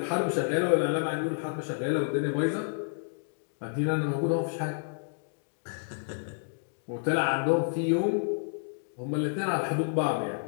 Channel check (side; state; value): right; silent; digital silence